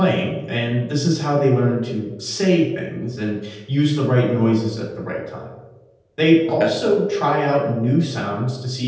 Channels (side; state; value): both; identical; correlation 1.00